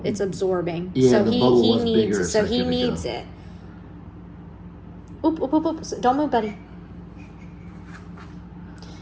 it's absorbing. Yeah, so the he bubble was needs bigger. so It's he like, here we needs go. it. Oop, oop, oop, oop. Don't move, buddy.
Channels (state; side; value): identical; both; correlation 1.00